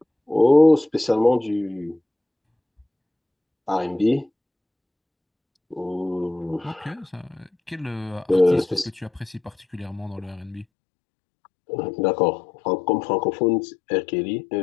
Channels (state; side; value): drops out; right; at 10.7 s